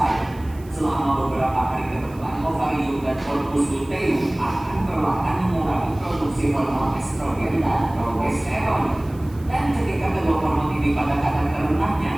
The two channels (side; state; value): right; noise; hiss, 26 dB below the sound